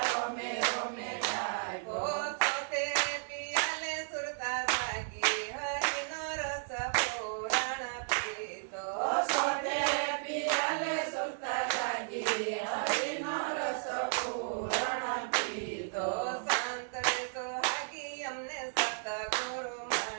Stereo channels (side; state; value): left; silent; digital silence